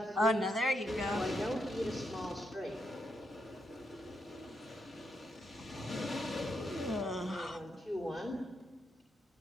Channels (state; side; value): normal; both; correlation 0.81